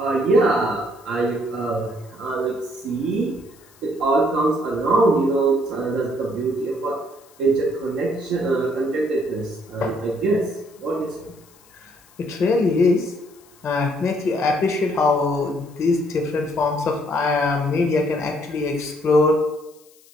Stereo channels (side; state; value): left; noise; hiss, 28 dB below the sound